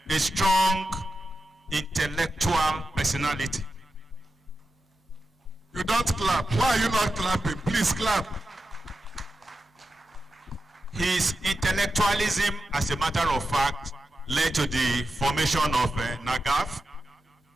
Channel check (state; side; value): normal; both; correlation 0.90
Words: strong intellectual personality. You don't clap. Why are you not clapping? Please clap. His intellectualism, as a matter of fact, led to the formation of NAGAF,